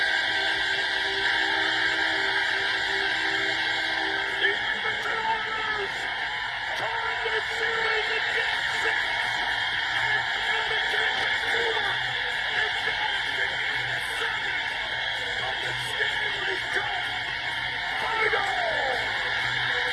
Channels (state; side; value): identical; both; correlation 1.00